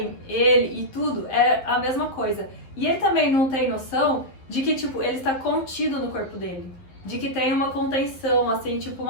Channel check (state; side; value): late; right; 11 ms